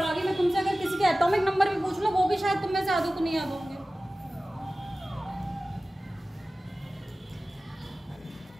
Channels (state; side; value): normal; both; correlation 0.97